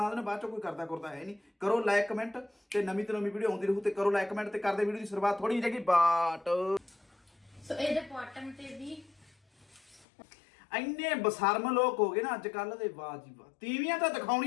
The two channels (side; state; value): right; drops out; at 10.1 s